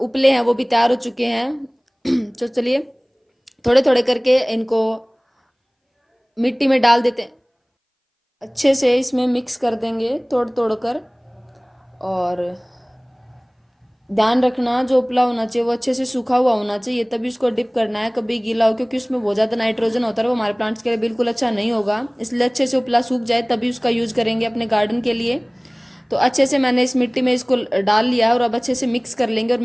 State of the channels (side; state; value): both; identical; correlation 1.00